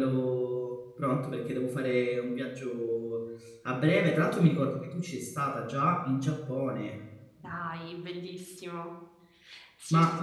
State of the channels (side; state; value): both; identical; correlation 1.00